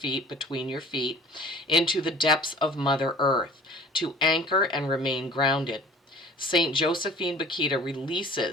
between your feet, into the depths of Mother Earth, to anchor and remain grounded. St. Josephine Bakita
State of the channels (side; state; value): both; normal; correlation 0.46